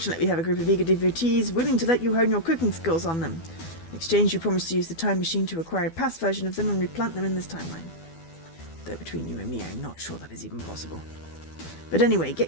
we have a group of eager devotees willing to let you hone your cooking skills on them. In exchange, you promise to use the time machine to acquire a past version of them and replant them in this timeline. Though between you and me, I'm not sure that is even possible. But anyway,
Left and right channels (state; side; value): late; right; 12 ms